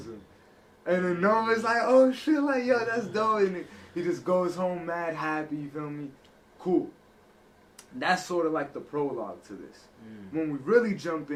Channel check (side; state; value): both; identical; correlation 1.00